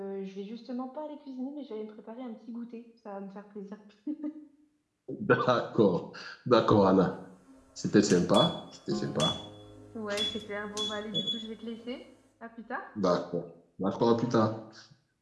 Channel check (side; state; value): both; identical; correlation 1.00